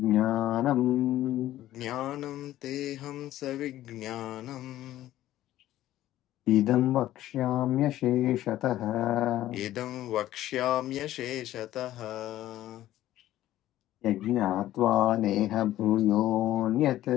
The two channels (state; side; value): quieter; right; 14.0 dB